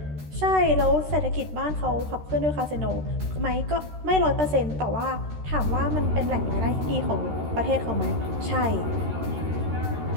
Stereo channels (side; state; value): left; late; 13 ms